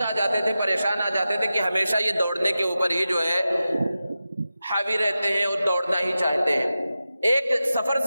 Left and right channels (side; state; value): both; inverted; correlation -0.93